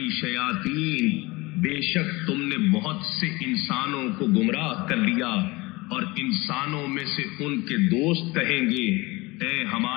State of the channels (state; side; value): quieter; right; 22.9 dB